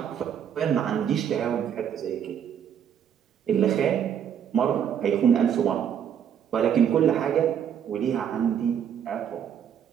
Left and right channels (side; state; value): left; quieter; 8.7 dB